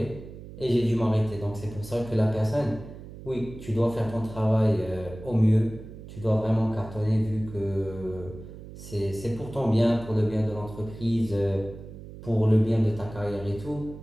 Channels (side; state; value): right; noise; hum, 14 dB below the sound